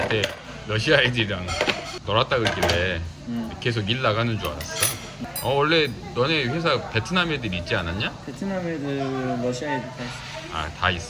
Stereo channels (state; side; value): identical; both; correlation 1.00